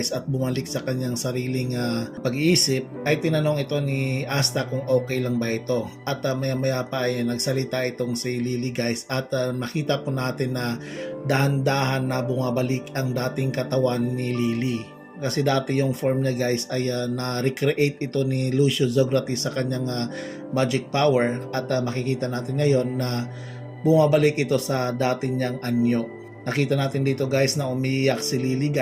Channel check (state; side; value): identical; both; correlation 1.00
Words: at bumalik sa kanyang sariling pag-iisip ay tinanong ito ni Asta kung okay lang ba ito at maya-maya pa ay nagsalita itong si Lily guys at nakita po natin na dahan-dahan na bumabalik ang dating katawan ni Lily. Kasi dati yung form niya guys ay na-recreate ito ni Lucio Zografis sa kanyang magic power at makikita natin ngayon na bumabalik ito sa dating niyang anyo. Nakita natin dito guys na umiiyak si Lily